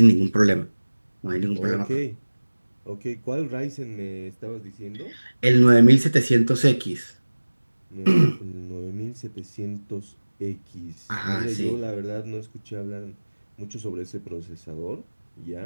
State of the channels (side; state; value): both; inverted; correlation -1.00